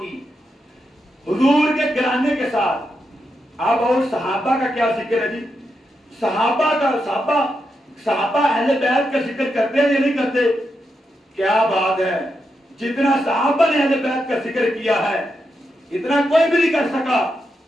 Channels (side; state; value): both; normal; correlation 0.85